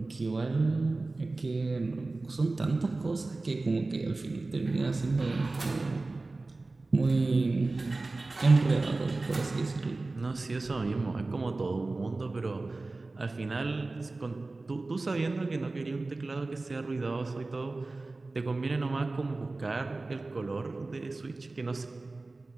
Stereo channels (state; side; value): quieter; left; 3.3 dB